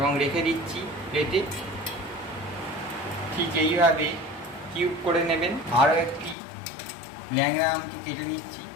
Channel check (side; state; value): right; drops out; at 6.4 s